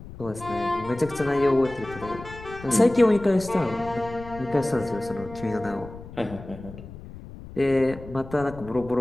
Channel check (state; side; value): noise; left; rumble, 15 dB below the sound